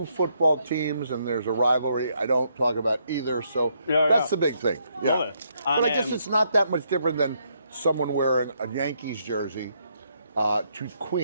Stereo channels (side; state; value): both; inverted; correlation -0.74